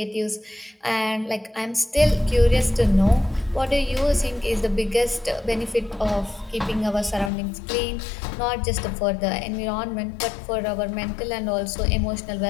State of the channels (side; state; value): right; drops out; at 7.3 s